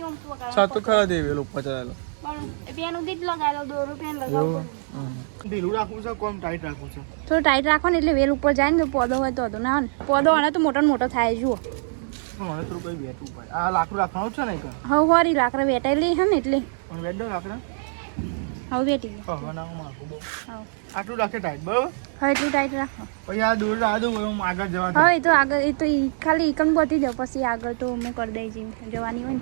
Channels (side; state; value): left; silent; digital silence